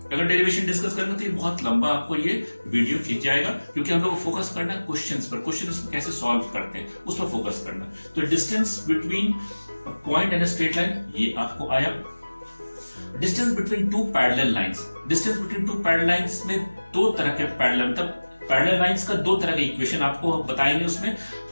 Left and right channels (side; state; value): both; inverted; correlation -1.00